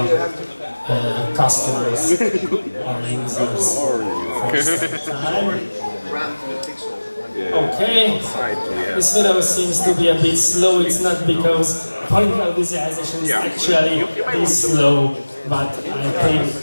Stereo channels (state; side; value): inverted; both; correlation -1.00